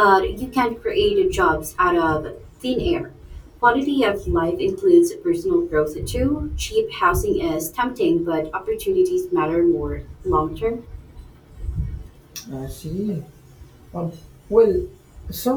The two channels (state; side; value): identical; both; correlation 1.00